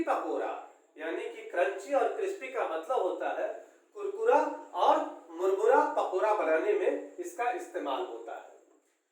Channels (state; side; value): identical; both; correlation 1.00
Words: pakora, यानी कि क्रंची और क्रिस्पी का मतलब होता है कुरकुरा और मुरमुरा पकोड़ा बनाने में इसका इस्तेमाल होता है।